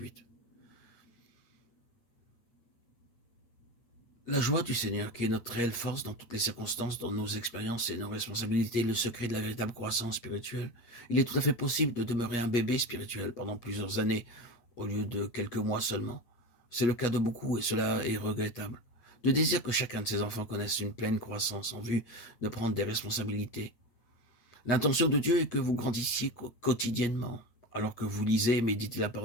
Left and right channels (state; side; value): late; right; 8.4 ms